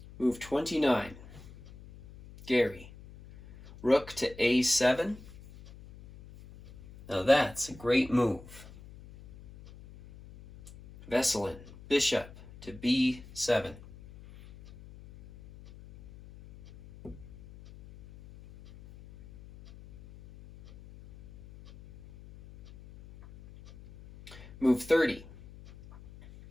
Move 29, Garry, rook to a7. Now that's a great move. Veselin, bishop to b7. Move 30,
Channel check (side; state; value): left; noise; hum, 19 dB below the sound